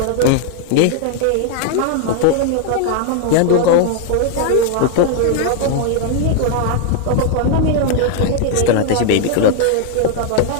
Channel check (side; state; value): both; different; correlation 0.00